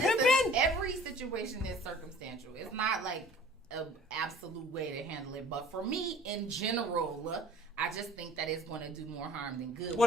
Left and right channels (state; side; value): normal; both; correlation 0.49